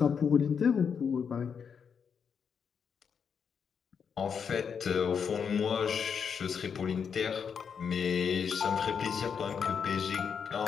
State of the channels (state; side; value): quieter; right; 6.8 dB